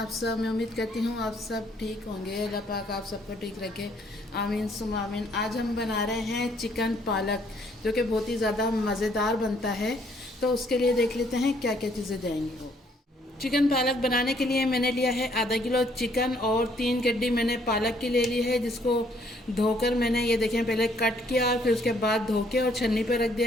सब। मैं उम्मीद करती हूँ आप सब ठीक होंगे। अल्लाह पाक आप सबको ठीक रखे, आमीन सुम आमीन। आज हम बना रहे हैं चिकन पालक, जो कि बहुत ही ज़्यादा मज़ेदार बनता है। तो उसके लिए देख लेते हैं क्या क्या चीज़ें जाएंगी। वो चिकन पालक बनाने के लिए मैंने लिया है आधा किलो चिकन और 3 गड्डी मैंने पालक की ले ली है, जिसको धोकर मैंने ये देखें पहले कट किया, फिर उसके बाद धो के और छन्नी पे रख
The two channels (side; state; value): both; normal; correlation 0.66